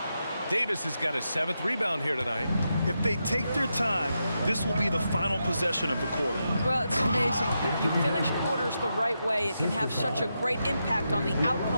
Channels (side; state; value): both; inverted; correlation -0.86